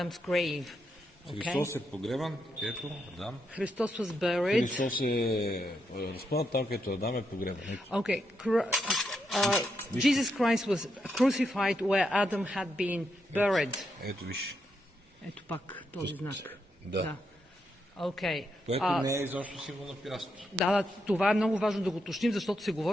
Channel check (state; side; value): normal; both; correlation 0.82